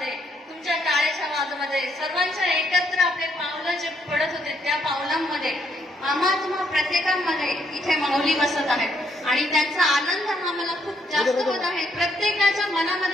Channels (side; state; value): both; normal; correlation 0.73